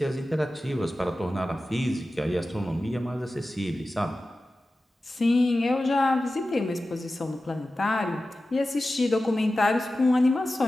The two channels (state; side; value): normal; both; correlation 0.94